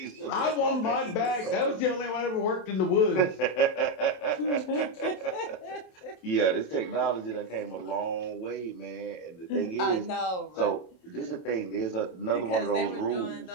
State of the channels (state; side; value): late; right; 27 ms